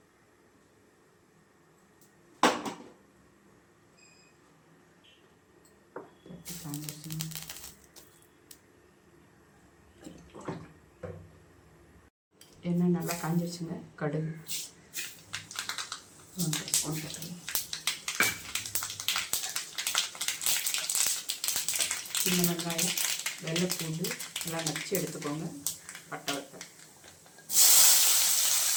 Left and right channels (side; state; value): both; identical; correlation 1.00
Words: எண்ணெய் நல்லா காஞ்சிருச்சுங்க. கடுகு 1 ஸ்பூன் போட்டுருங்க. சின்ன வெங்காயம், வெள்ளைப்பூண்டு எல்லாம் நச்சு எடுத்துக்கோங்க. பட்டை வத்தல்,